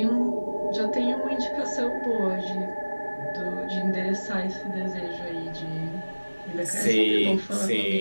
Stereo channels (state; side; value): inverted; both; correlation -1.00